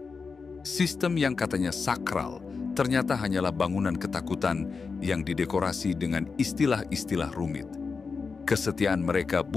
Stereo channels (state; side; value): quieter; right; 4.9 dB